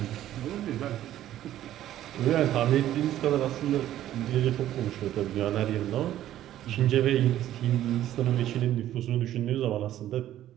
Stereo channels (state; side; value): quieter; left; 12.7 dB